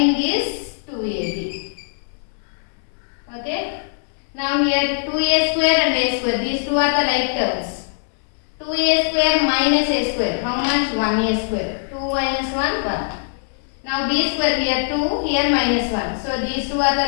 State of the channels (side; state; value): right; silent; 65 dB below the other